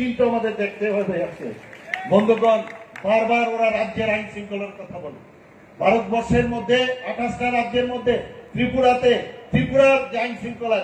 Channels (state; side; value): identical; both; correlation 1.00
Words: আমাদের দেখতে হবে। বন্ধুগণ, বারবার ওরা রাজ্যের আইন শৃঙ্খলার কথা বলে। ভারতবর্ষের মধ্যে 28টা রাজ্যের মধ্যে ত্রিপুরার যে আইন শৃঙ্খলা